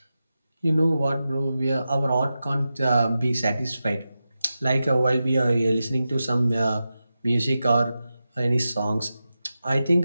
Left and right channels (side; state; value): both; inverted; correlation -0.92